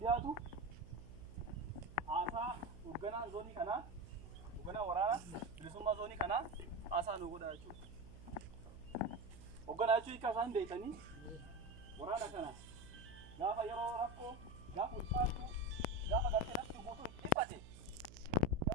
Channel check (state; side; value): noise; right; hum, 16 dB below the sound